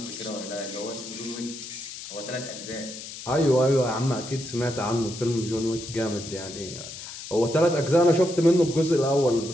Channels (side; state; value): left; noise; hiss, 11 dB below the sound